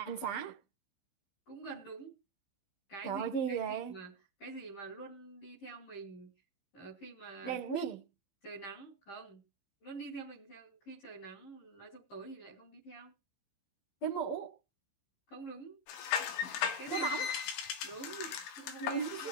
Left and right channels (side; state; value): right; late; 15 ms